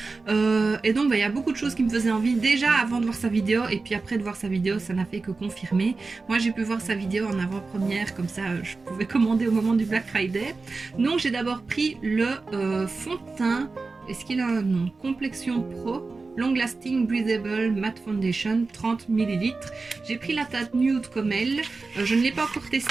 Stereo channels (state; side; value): quieter; left; 3.9 dB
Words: Et donc il y a beaucoup de choses qui me faisaient envie déjà avant de voir sa vidéo, et puis après de voir sa vidéo ça n'a fait que confirmer. Moi j'ai pu voir sa vidéo en avant-première, comme ça je pouvais commander au moment du Black Friday. Donc j'ai d'abord pris le fond de teint, est-ce qu'il a un nom? Complexion Pro Long Lasting Breathable Matte Foundation, 30 ml. J'ai pris la teinte nude comme elle. Je ne l'ai pas encore